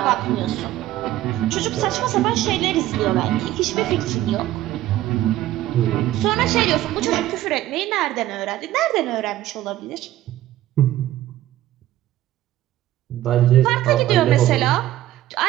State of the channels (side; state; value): left; quieter; 14.3 dB